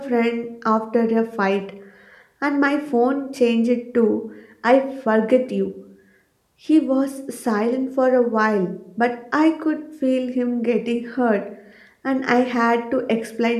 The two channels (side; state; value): both; identical; correlation 1.00